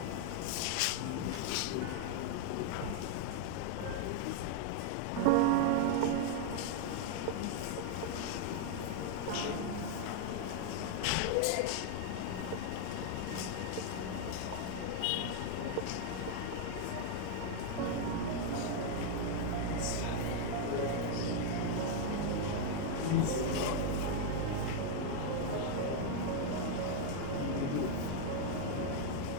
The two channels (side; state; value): both; different; correlation 0.00